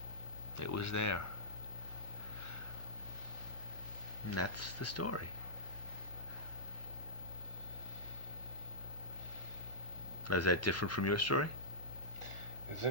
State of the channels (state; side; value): normal; both; correlation -0.13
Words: it was there. And that's the story. Is that different from your story? It's